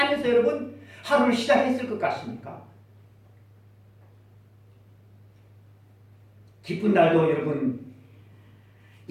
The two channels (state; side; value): identical; both; correlation 1.00